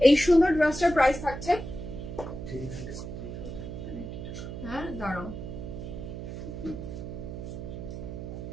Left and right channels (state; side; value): noise; right; hum, 8 dB below the sound